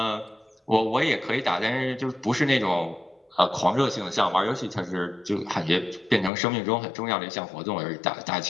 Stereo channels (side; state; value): right; drops out; at 6.3 s